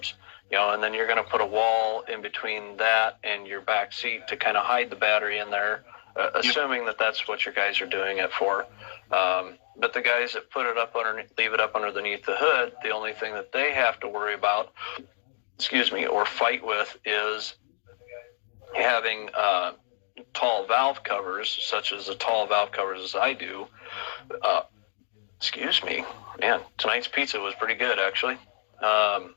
and then you're going to put a wall in between that and your back seat to kind of hide the battery in there, assuming that that's what your guys are doing it for. But the guys that put it up leave it up underneath the hood, the only thing that they have to worry about, or fight with, is having tall valve covers, such as the tall valve covers as I do. Man, tonight's pizza was pretty good, actually.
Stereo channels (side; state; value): right; silent; digital silence